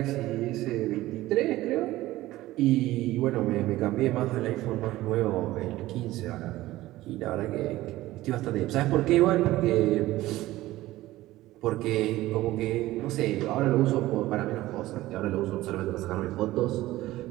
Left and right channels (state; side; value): quieter; left; 16.7 dB